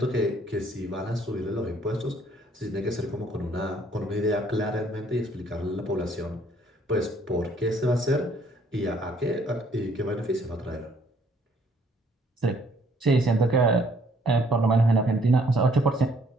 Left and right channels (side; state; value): both; normal; correlation 0.63